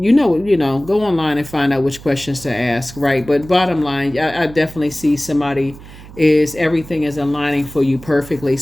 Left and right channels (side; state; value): right; noise; hum, 18 dB below the sound